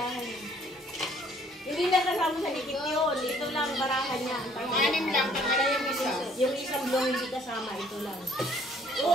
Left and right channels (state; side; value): normal; both; correlation 0.60